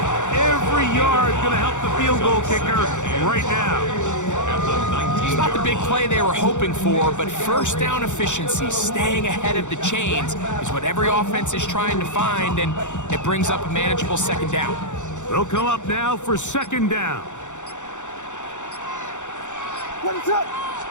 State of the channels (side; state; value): right; late; 0.85 ms